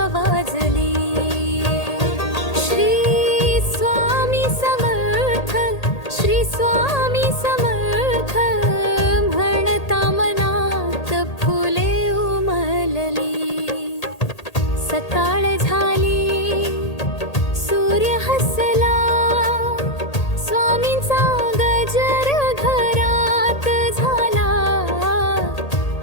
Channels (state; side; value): late; right; 1.8 ms